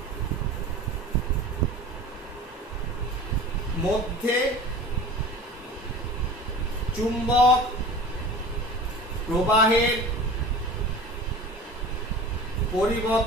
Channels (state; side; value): normal; both; correlation 0.38